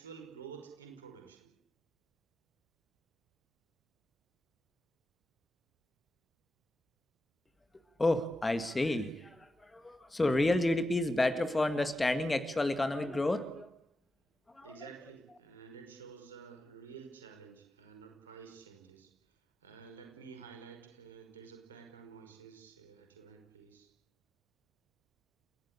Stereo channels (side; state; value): both; normal; correlation 0.90